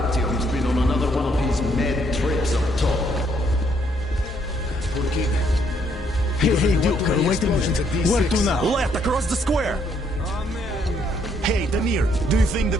been on another one of his mad trips up top. Hey, Duke, wait a minute. Where to now? Left, across the square. Hey, Damir, do you think the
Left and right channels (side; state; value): both; normal; correlation 0.70